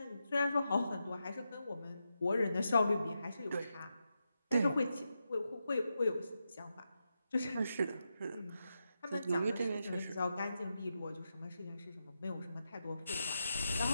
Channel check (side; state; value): both; inverted; correlation -0.87